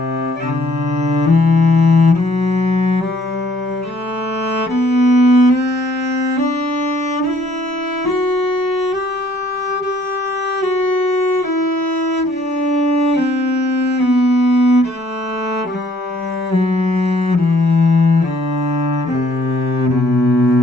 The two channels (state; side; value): normal; both; correlation 0.62